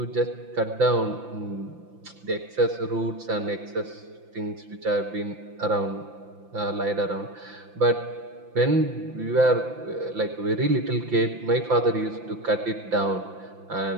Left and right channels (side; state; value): left; late; 5.9 ms